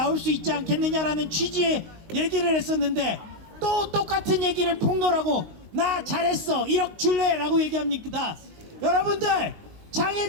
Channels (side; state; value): left; late; 19 ms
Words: 수 있지 않겠느냐라는 취지의 얘기를 했었는데 또 똑같은 얘기를 폭로하고 나 잘했어 1억 줄래 라고 얘기합니다. 여러분들,